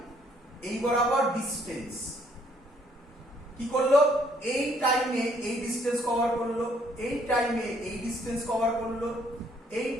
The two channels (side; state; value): both; normal; correlation 0.65